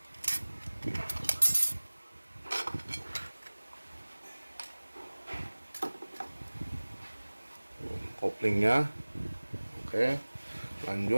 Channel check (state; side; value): inverted; both; correlation -1.00